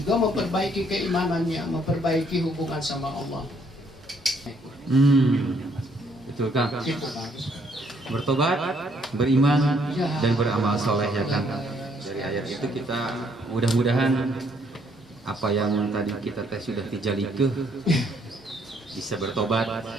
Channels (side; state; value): both; normal; correlation 0.68